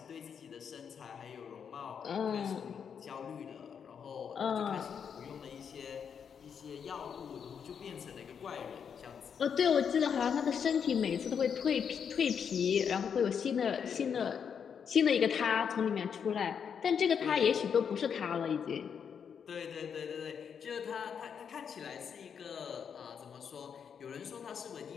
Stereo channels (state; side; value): quieter; right; 7.2 dB